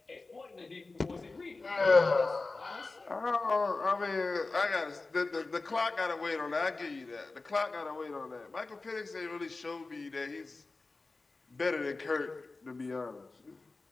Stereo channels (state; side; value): quieter; right; 3.6 dB